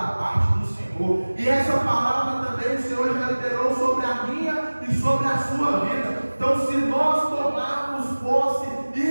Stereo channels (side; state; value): both; inverted; correlation -1.00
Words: parte do Senhor. E essa palavra também o Senhor já liberou sobre a minha e sobre a sua vida. Então, se nós tomarmos posse,